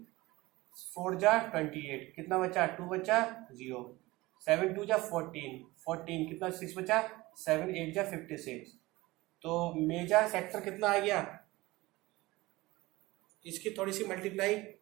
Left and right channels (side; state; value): left; quieter; 20.3 dB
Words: 4 जा 28 कितना बचा 2 बचा 0, 7 2 जा 14, 14 कितना 6 बचा 7 8 जा 56। तो मेजर सेक्टर कितना आ गया, इसकी थोड़ी सी मल्टीप्लाई